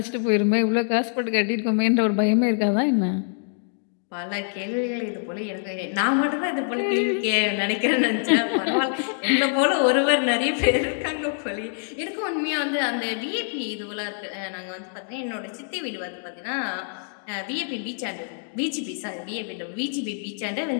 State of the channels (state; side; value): silent; right; digital silence